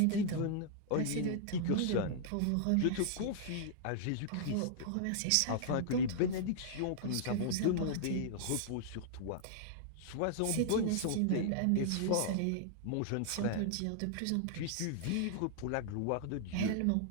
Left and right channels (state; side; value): different; both; correlation -0.01